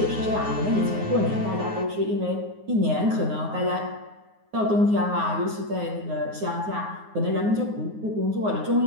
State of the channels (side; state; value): left; late; 9.5 ms